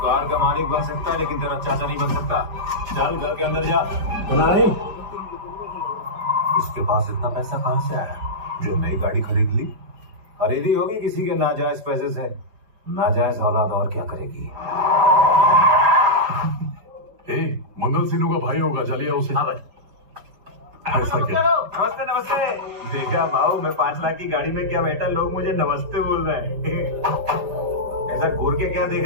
बन सकता है लेकिन तेरा चाचा नहीं बन सकता। चल घर के अंदर जा। नहीं, इसके पास इतना पैसा कहां से आया जो नई गाड़ी खरीद ली? खरीदी होगी किसी के नाजायज पैसे से। नाजायज औलाद और क्या करेगी? मंगल सिन्हू का भाई होगा, चलिए उसे। हाँ भाई। ऐसा क्या? नमस्ते नमस्ते। देखा भाऊ, मैं 5 लाख की गाड़ी में क्या बैठा, लोग मुझे नमस्ते बोल रहे हैं। ऐसा घूर के क्या देख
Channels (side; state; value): left; late; 4.6 ms